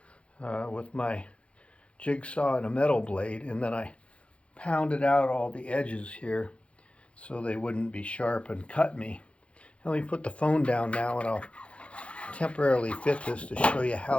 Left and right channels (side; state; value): right; late; 0.061 ms